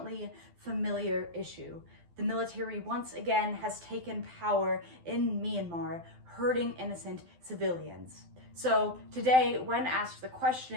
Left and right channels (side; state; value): left; late; 12 ms